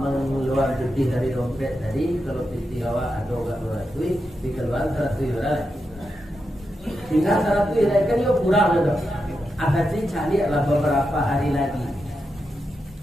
duit dari dompet tadi, kalau piti awak ada enggak beratui, dikeluarkan 100 yuran. Tinggal 100 yuran kan yo kurang dah. Akan dicari lah beberapa hari lagi.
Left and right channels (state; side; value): normal; both; correlation 0.87